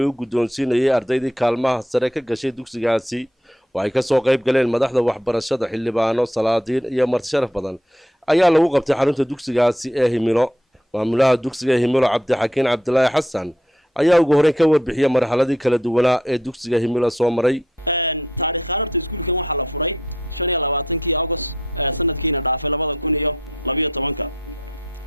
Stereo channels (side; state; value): both; normal; correlation 0.71